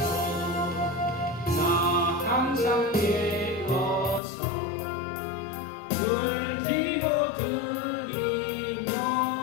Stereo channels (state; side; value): drops out; right; at 4.2 s